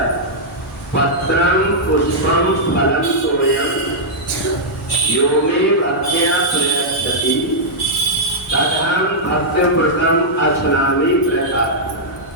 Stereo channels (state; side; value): normal; both; correlation -0.08